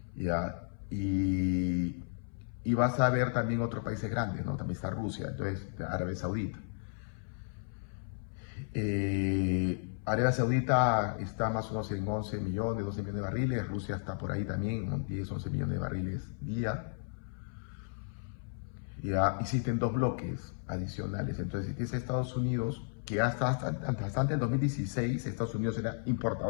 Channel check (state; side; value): silent; right; 55 dB below the other